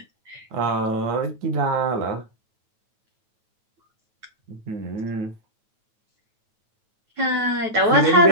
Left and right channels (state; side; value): late; left; 9.1 ms